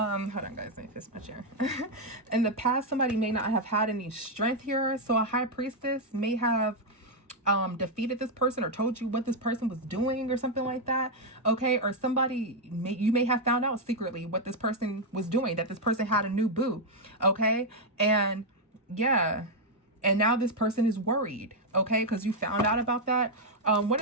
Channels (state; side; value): normal; both; correlation 0.00